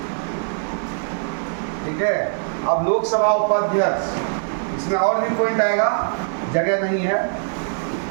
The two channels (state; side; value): silent; left; digital silence